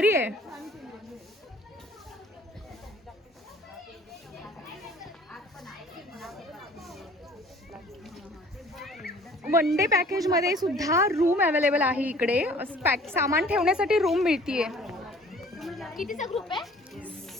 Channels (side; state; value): both; normal; correlation 0.52